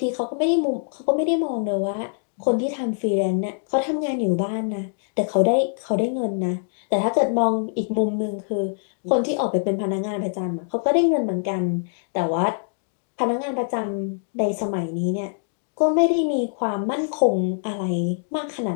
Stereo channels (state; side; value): silent; right; digital silence